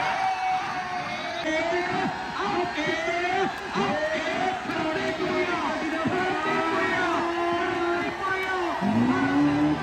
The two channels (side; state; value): both; identical; correlation 1.00